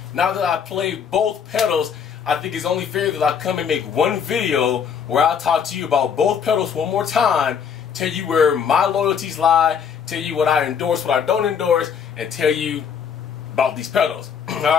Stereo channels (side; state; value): right; quieter; 7.3 dB